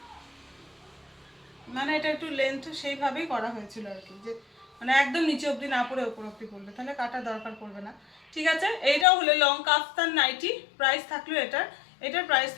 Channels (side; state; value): right; drops out; at 9.1 s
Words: মানে এটা একটু লেন্থ সেইভাবেই করা হয়েছিল আর কি, যে মানে একদম নিচে অবধি না পড়ে ওপর অবধি পড়লে তাহলে কাটার দরকার পড়বে না। ঠিক আছে, এইটাও হলো লং কাফতান নাইটি, প্রাইস থাকলো এটার প্রাইস